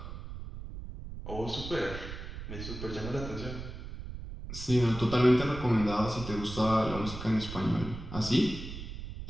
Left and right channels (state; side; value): noise; right; rumble, 9 dB below the sound